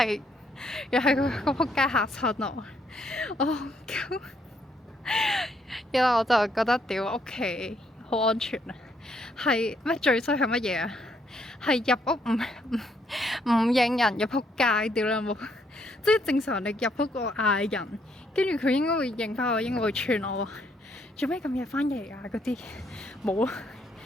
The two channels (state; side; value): normal; both; correlation 0.72